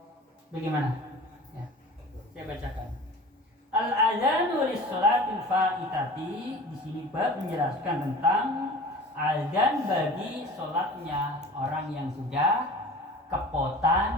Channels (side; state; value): both; normal; correlation 0.40